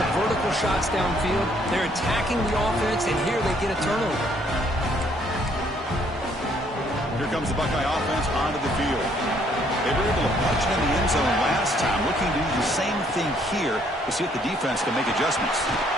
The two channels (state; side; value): normal; both; correlation 0.66